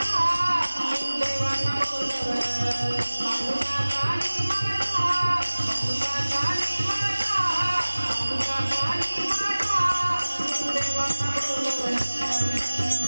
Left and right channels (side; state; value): both; inverted; correlation -1.00